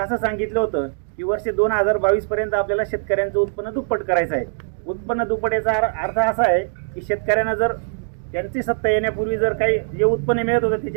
असं सांगितलं होतं की वर्ष 2022 पर्यंत आपल्याला शेतकऱ्यांचं उत्पन्न दुप्पट करायचं आहे। उत्पन्न दुप्पट याचा अर्थ असा आहे की शेतकऱ्यांना जर त्यांची सत्ता येण्यापूर्वी जर काही जे उत्पन्न मिळत होतं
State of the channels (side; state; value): left; silent; digital silence